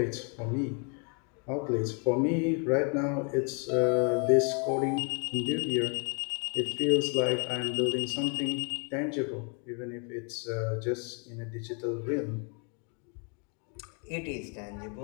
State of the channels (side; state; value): right; quieter; 38.0 dB